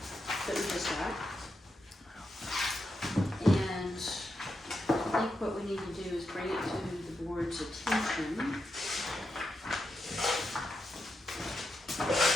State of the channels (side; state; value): both; normal; correlation 0.85